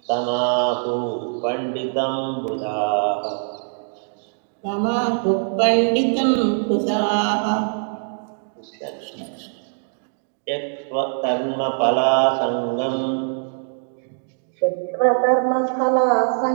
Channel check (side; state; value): left; silent; digital silence